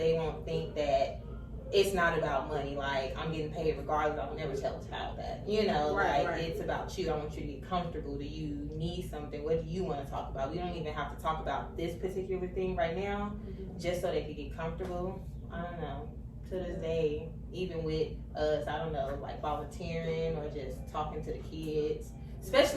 won't think that it's not about money, like, I'm getting paid regardless, I would never tell a child that, you know, it's about you, I want you to be comfortable, do you need something, what do you want to talk about, we don't even have to talk about this particular thing right now, just so they can get comfortable. I don't know, to this day, even with us, I don't know, like volunteering or just talking to the kids,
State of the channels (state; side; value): identical; both; correlation 1.00